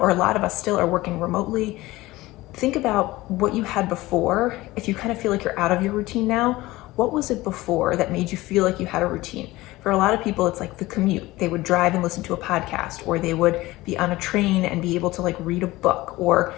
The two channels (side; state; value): right; quieter; 18.9 dB